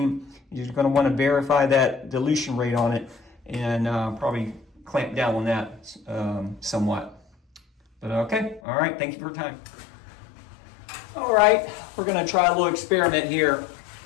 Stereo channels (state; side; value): drops out; right; at 8.6 s